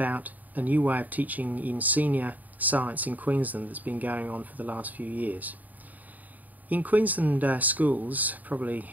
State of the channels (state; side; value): late; left; 0.080 ms